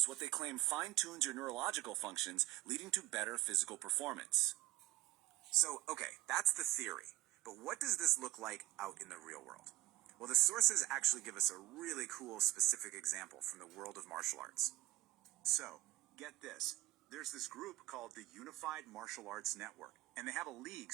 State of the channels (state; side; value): quieter; left; 16.3 dB